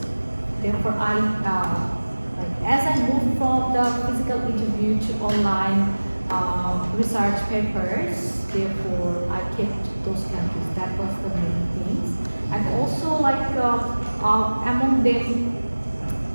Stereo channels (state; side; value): inverted; both; correlation -1.00